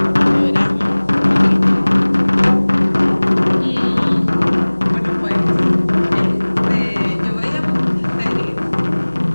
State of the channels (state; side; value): inverted; both; correlation -1.00